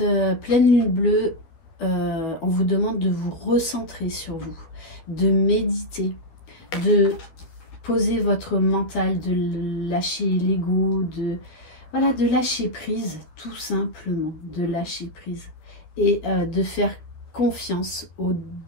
pleine lune bleue, on vous demande de vous recentrer sur vous, de méditer, de poser votre mental, de lâcher l'ego, voilà, de lâcher prise, tout simplement, de lâcher prise. Et de faire confiance au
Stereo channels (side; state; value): right; late; 12 ms